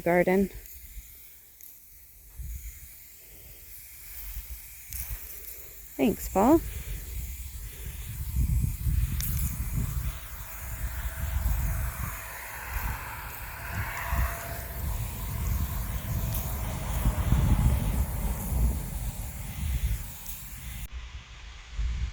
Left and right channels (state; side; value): identical; both; correlation 1.00